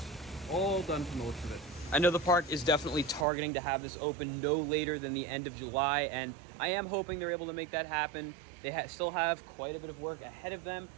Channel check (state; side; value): drops out; left; at 3.2 s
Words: all done from the looks of it. I know the park is definitely targeting to have this open no later than the end of July, and I am hoping they're able to make that happen. They still have quite a bit of work ahead of them.